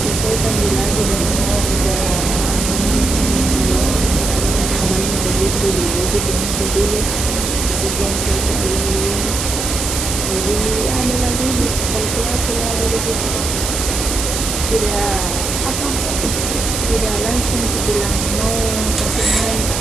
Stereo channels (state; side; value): noise; right; hiss, 3 dB below the sound